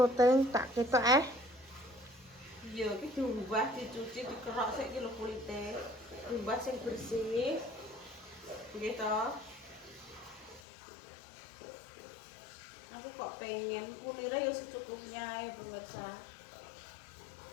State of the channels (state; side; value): drops out; right; at 10.6 s